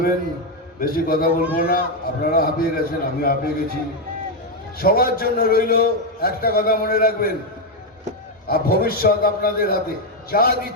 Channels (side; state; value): both; normal; correlation 0.04